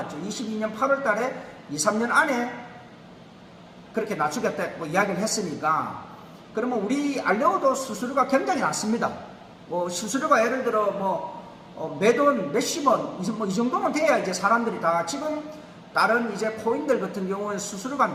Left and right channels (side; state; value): both; identical; correlation 1.00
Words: 22년 8월 달에 2, 3년 안에 그렇게 낮추겠다고 이야기를 했으니까, 그러면 우리 알레오도 수수료가 굉장히 낮습니다. 뭐 수수료가 예를 들어 뭐 매돈 몇십 원, 뭐 이 정도는 돼야 이제 사람들이 다, 지금 다른 이제 코인들 같은 경우는 수수료가